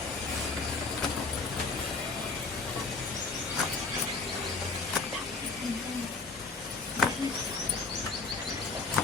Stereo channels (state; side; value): quieter; right; 4.2 dB